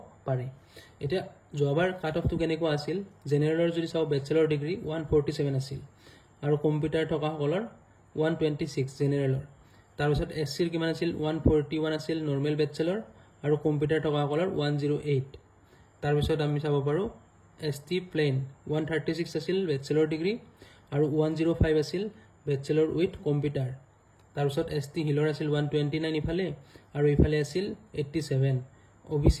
পাৰে এতিয়া যোৱাবাৰ কাট অফটো কেনেকুৱা আছিল জেনেৰেলৰ যদি চাও বেচেলৰ ডিগ্ৰী 147 আছিল আৰু কম্পিউটাৰ থকা সকলৰ 126 জেনেৰেলৰ তাৰ পিছত এসসিৰ কিমান আছিল 141 আছিল নৰমাল বেচেলৰ আৰু কম্পিউটাৰ থকা সকলৰ 108 তাৰ পিছত আমি চাব পাৰো এসটি প্লেন 136 আছিল বেচেলৰ ডিগ্ৰী আৰু 105 আছিল বেচেলৰ উইথ কম্পিউটাৰ তাৰ পিছত এসটি হিলৰ আছিল 129 ইফালে আৰু ইফালে আছিল 87 ওবিসি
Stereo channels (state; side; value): identical; both; correlation 1.00